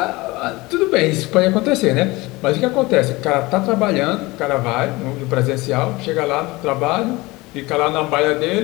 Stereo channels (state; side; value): quieter; right; 21.9 dB